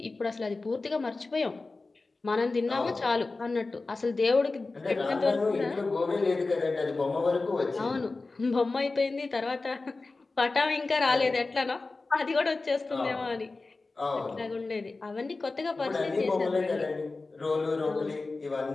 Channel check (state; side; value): quieter; right; 3.6 dB